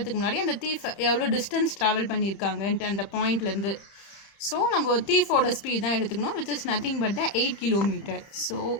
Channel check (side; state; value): right; late; 30 ms